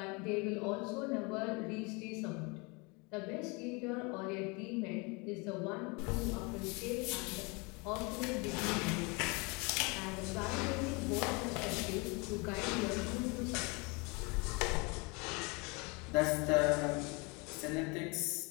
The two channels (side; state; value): right; quieter; 29.0 dB